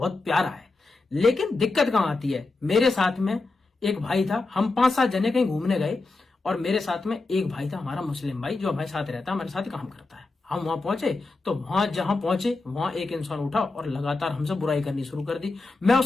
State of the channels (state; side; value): quieter; right; 3.5 dB